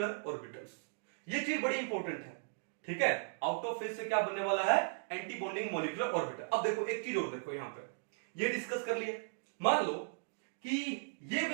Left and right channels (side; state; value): left; silent; digital silence